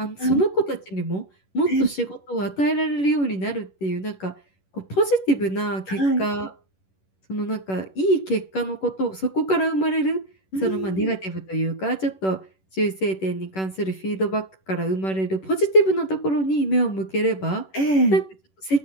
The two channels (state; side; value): late; right; 11 ms